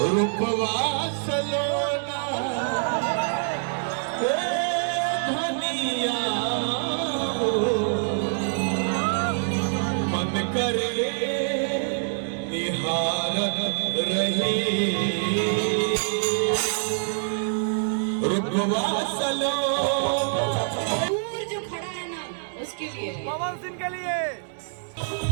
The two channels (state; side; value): silent; left; digital silence